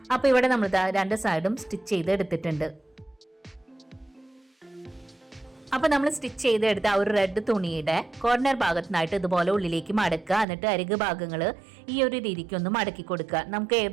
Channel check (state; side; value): drops out; left; at 10.5 s